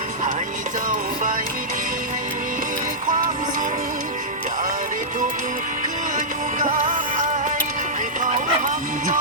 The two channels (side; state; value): both; normal; correlation -0.12